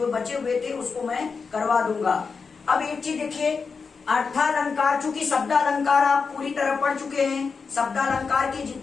बचे हुए थे उसको मैं करवा दूंगा। अब एक चीज देखिए, अर्थालंकार, चूंकि शब्दालंकार आप पूरी तरह पढ़ चुके हैं, शब्दालंकार के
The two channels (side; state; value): right; quieter; 5.1 dB